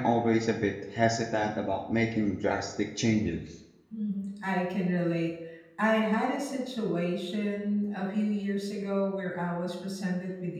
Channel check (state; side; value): identical; both; correlation 1.00